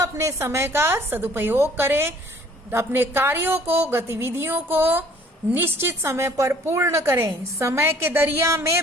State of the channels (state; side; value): normal; both; correlation 0.56